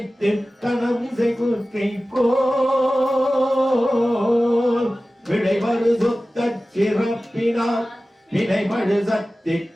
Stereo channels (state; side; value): normal; both; correlation 0.96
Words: கனவிசை குற்றை போல் விளைவரு சொத்த சிறப்பினால் வினைமழு சக்தி